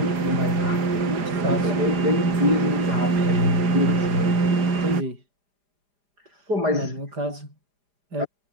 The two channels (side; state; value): left; late; 4.9 ms